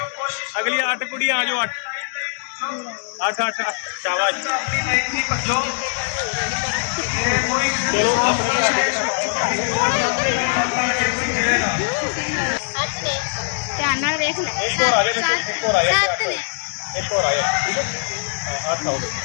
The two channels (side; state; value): right; silent; digital silence